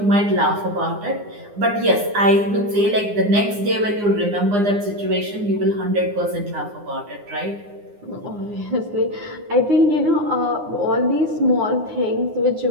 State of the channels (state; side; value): late; left; 9.7 ms